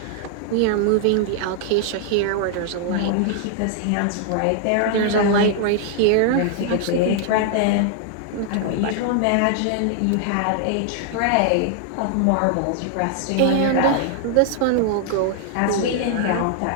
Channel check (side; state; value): both; different; correlation -0.01